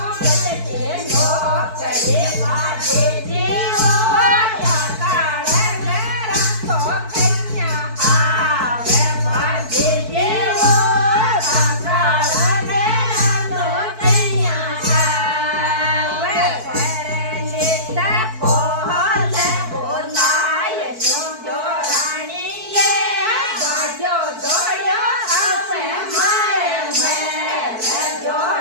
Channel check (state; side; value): late; left; 4.5 ms